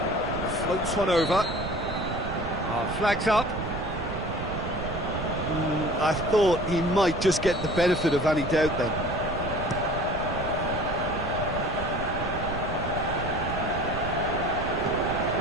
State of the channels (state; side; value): noise; right; rumble, 7 dB below the sound